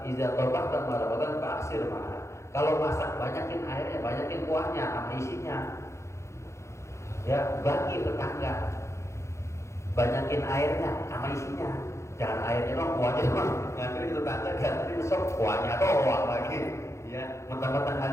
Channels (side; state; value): right; late; 0.14 ms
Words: iza tabaqta marabatan fa'sir ma'a. Kalau masak banyakin airnya, banyakin kuahnya sama isinya. Ya, bagi tetangga. Banyakin airnya sama isinya. Jangan airnya dong, kuahnya doang. Nanti tetangga ganti besok kuahnya doang lagi. Ya, mentang-mentang